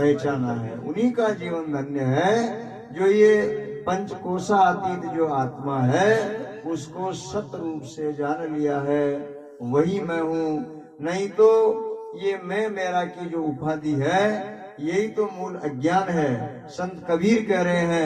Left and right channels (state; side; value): identical; both; correlation 1.00